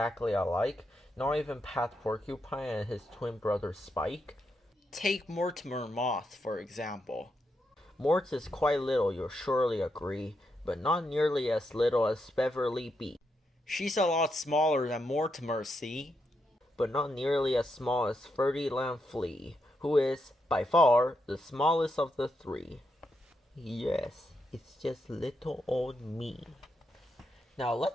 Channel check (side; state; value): both; normal; correlation 0.82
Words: alike? Not even Pat Porcupine and his twin brother Spike? Take Mortimer Moth, for example. Mort is quite little, you'll surely agree, but not nearly as little as Beverly Bee. She's a lot smaller than Mortimer, see? But not nearly as small as Ferdinand Flea, who is, by far, the smallest of the three. Yes, it's just little old me. Now